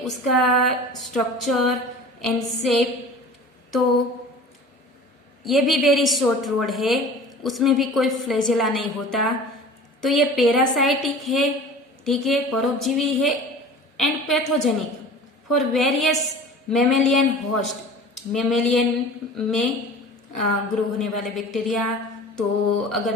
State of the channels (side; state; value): both; normal; correlation 0.40